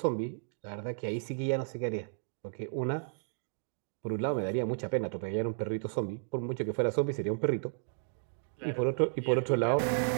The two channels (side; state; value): left; silent; digital silence